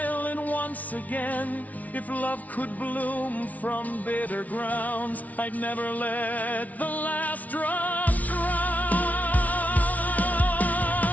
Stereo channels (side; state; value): right; late; 0.072 ms